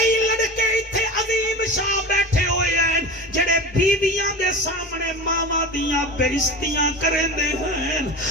لڑکے اتھے عظیم شاہ بیٹھے ہوئے ہیں جڑے بیویاں دے سامنے ماما دیاں بےعزتیاں کرندے ہیں.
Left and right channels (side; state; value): both; normal; correlation 0.31